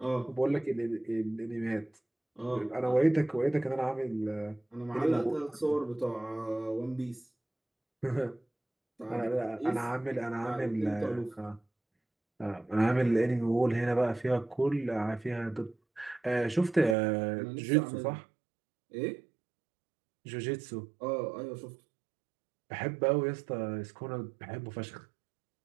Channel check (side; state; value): left; drops out; at 16.9 s